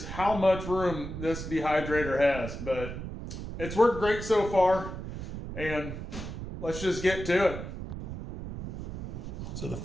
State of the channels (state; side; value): noise; right; rumble, 8 dB below the sound